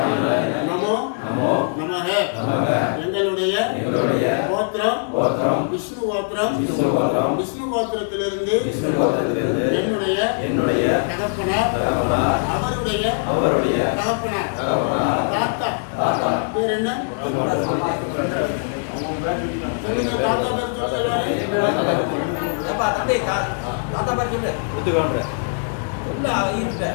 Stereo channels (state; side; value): silent; right; 57 dB below the other